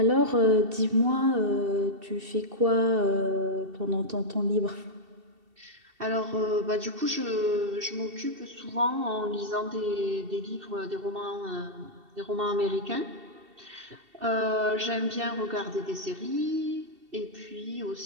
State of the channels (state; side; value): late; left; 2.7 ms